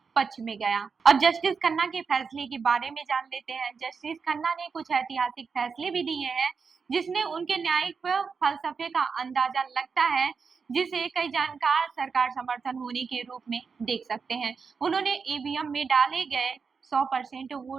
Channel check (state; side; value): quieter; left; 5.5 dB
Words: पक्ष में गया। अब जस्टिस खन्ना के फैसले के बारे में जान लेते हैं। जस्टिस खन्ना ने कुछ ऐतिहासिक फैसले भी दिए हैं जिसने उनके न्यायिक फलसफे का अंदाजा लगता है, जिसे कई जानकार सरकार समर्थन होने के रूप में देख सकते हैं। उन्होंने ईवीएम में डाले गए 100%